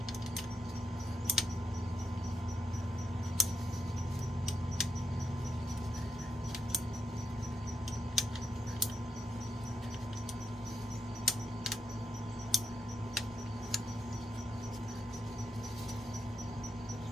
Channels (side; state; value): both; normal; correlation 0.81